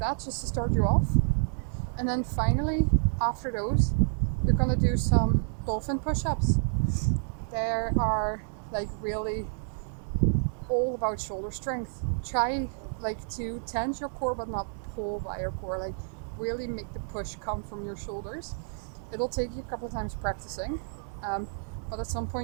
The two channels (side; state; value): left; silent; digital silence